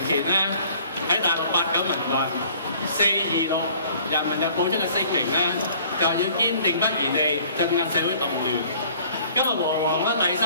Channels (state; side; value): inverted; both; correlation -0.54